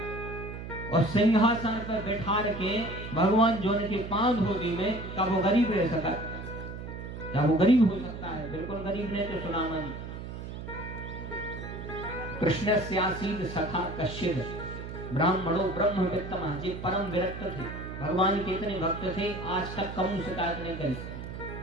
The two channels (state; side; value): noise; right; hum, 9 dB below the sound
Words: और सिंहासन पर बैठा के भगवान जो उनके पांव धो दी में का वो गरीब रह सका? क्या वो गरीब हो सकता है? बिल्कुल गरीब नहीं थे सुदामा जी। कृष्ण स्यासीद सखा कश्चिद ब्राह्मणो ब्रह्मवित्तमः। ये परम विरक्त थे, भगवान के इतने भक्त थे, आज तक कभी शिकायत नहीं करी।